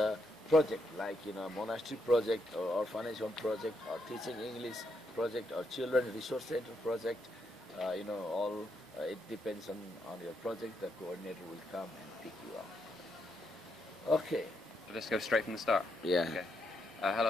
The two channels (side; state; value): both; normal; correlation 0.79